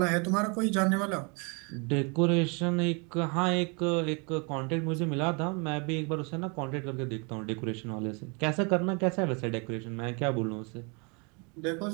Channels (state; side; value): quieter; left; 33.0 dB